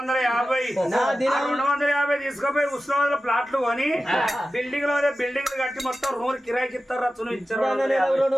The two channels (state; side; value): normal; both; correlation 0.94